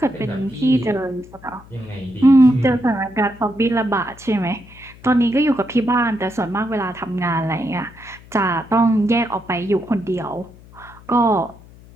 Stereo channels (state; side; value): noise; left; hum, 22 dB below the sound